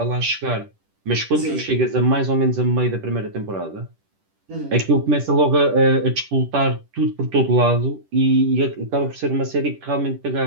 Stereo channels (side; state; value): left; late; 10 ms